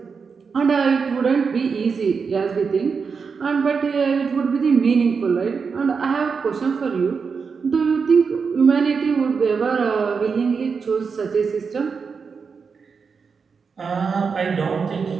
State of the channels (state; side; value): quieter; left; 5.5 dB